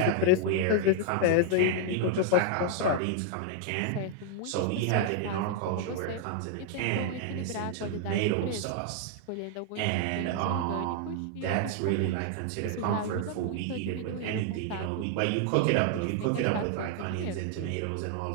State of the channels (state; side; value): different; both; correlation 0.00